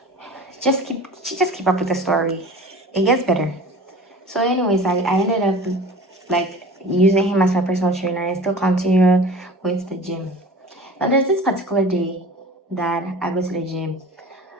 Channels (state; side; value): normal; both; correlation 0.40